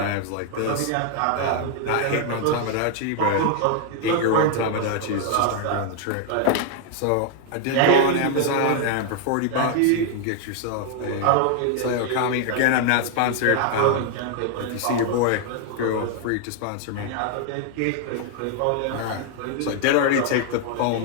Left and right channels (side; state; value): both; different; correlation 0.00